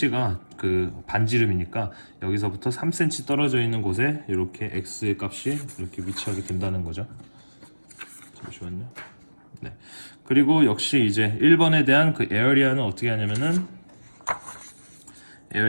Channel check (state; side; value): inverted; both; correlation -1.00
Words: 그 반지름이니까 여기서부터 3cm 떨어져 있는 곳에 이렇게 x의 값이 이렇게 위치하게 된다는 거죠. 잠시만요. 네. 그리고 역시 이제 1번에 대한 그 에어리아는 어떻게 하냐면은